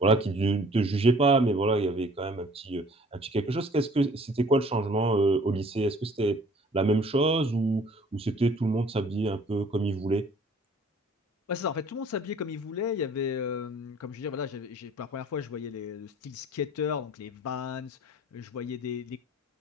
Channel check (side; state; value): both; normal; correlation 0.53